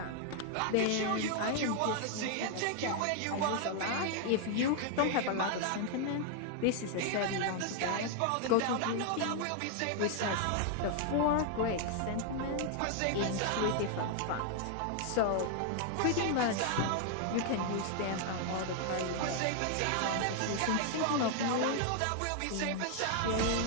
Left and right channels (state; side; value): different; both; correlation 0.00